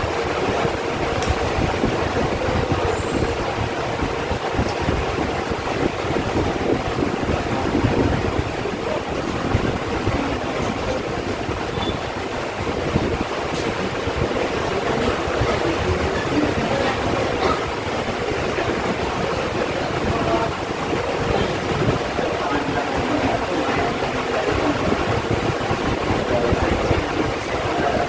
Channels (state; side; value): identical; both; correlation 1.00